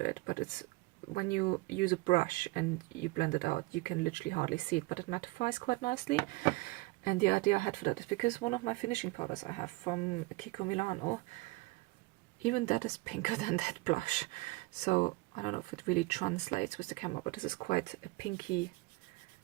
it, but it's, when you use a brush and you blend it out, you can literally hardly see it, but it mattifies quite nicely. And the idea I had for that is because one of my finishing powders I have from Kiko Milano, even that is pinker than that blush. So I don't know if it really translates with the camera, but this is quite a pinky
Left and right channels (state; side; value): quieter; left; 22.7 dB